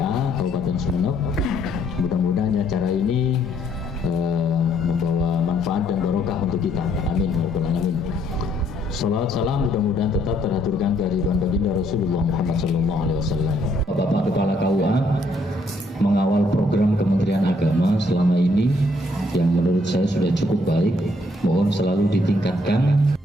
Kabupaten Sumeneb. Mudah-mudahan acara ini membawa manfaat dan barokah untuk kita. Amin. Amin. Salawat salam mudah-mudahan tetap teraturkan kehadiran baginda Rasulullah Muhammad SAW. Bapak Kepala KUA mengawal program Kementerian Agama selama ini yang menurut saya sudah cukup baik. Mohon selalu ditingkatkan.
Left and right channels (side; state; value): both; normal; correlation 0.69